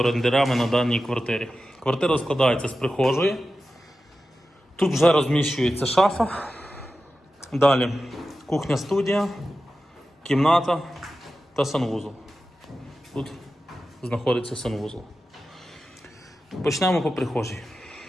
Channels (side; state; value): both; normal; correlation 0.93